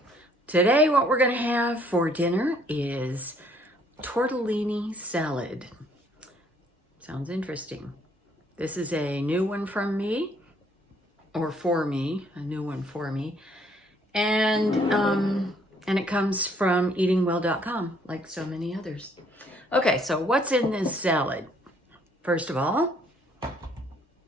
Today what we're going to have for dinner is tortellini salad. Sounds interesting. This is a new one from me, or for me, a new one for me. And it comes from eatingwell.com, like so many others. Okay, so what's in this salad? First of all,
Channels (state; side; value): normal; both; correlation 0.64